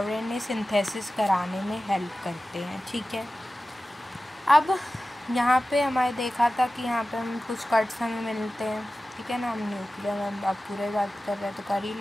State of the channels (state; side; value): normal; both; correlation 0.95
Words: सिंथेसिस कराने में हेल्प करते हैं, ठीक है। अब यहाँ पे हमारे देखा था कि यहाँ पे हम कुछ कट्स हमें मिलते हैं, ठीक है ना। हम न्यूक्लियर में अब पूरे बात कर रहे हैं तो कर ही